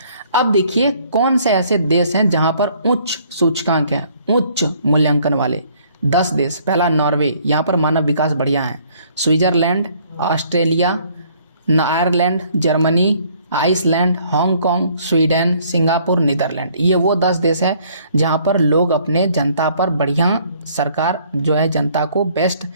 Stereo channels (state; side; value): inverted; both; correlation -0.61